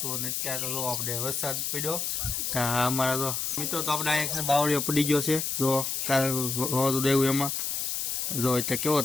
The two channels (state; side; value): noise; left; hiss, 1 dB below the sound